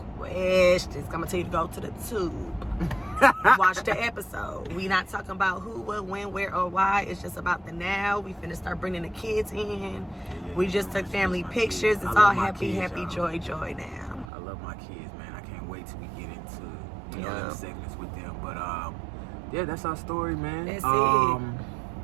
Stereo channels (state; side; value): drops out; left; at 14.3 s